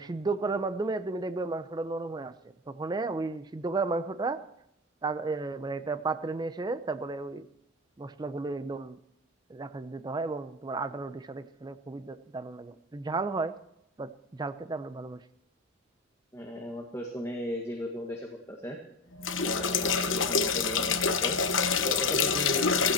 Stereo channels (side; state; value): both; normal; correlation 0.22